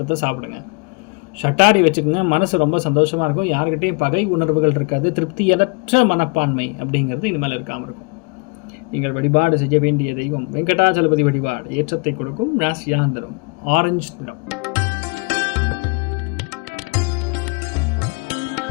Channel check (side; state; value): right; quieter; 30.8 dB